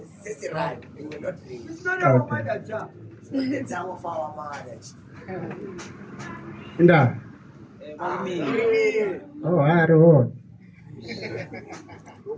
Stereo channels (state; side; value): identical; both; correlation 1.00